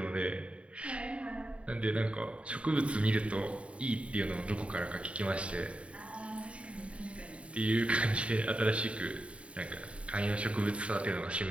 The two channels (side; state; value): left; late; 0.062 ms